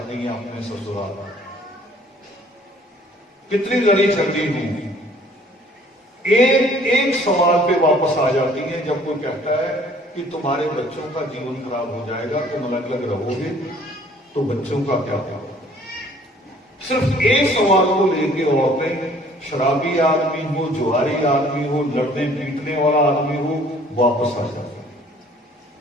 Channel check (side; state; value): both; normal; correlation 0.56